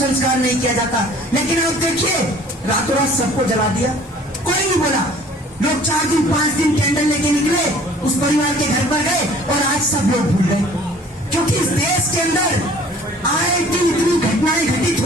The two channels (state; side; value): normal; both; correlation 0.51